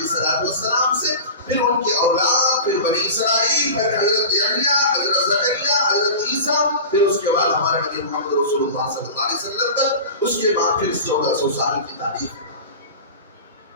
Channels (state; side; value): inverted; both; correlation -0.32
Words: السلام سے، پھر ان کے اولاد، پھر بنی اسرائیل، پھر حضرت یحییٰ، حضرت زکریا، حضرت عیسیٰ، پھر اس کے بعد ہمارے نبی محمد رسول اللہ صلی اللہ علیہ وسلم تک، اس کے بعد پھر 1400 سال کی تاریخ۔